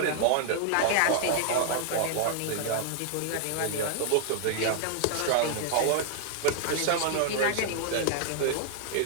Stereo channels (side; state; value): both; different; correlation -0.01